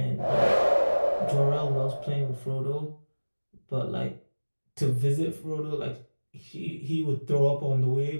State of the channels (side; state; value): both; inverted; correlation -1.00